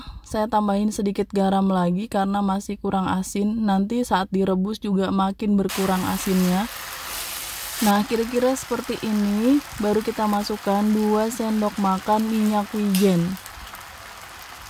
Saya tambahin sedikit garam lagi karena masih kurang asin. Nanti saat direbus juga makin berkurang asinnya. Nah, kira-kira seperti ini. Baru kita masukkan 2 sendok makan minyak wijen.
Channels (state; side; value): identical; both; correlation 1.00